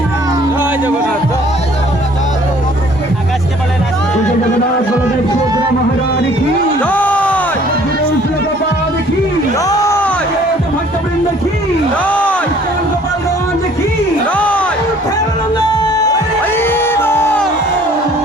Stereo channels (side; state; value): both; normal; correlation 0.55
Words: जगन्नाथ बलदेव सुभद्रा महाराज की गोपाल की भक्तवृंद की गोपालगंज की